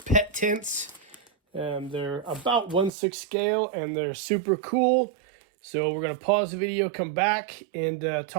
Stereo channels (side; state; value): left; drops out; at 2.9 s